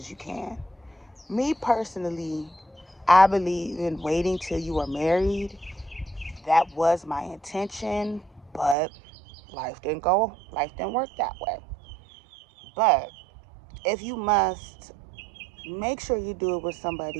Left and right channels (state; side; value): drops out; left; at 8.8 s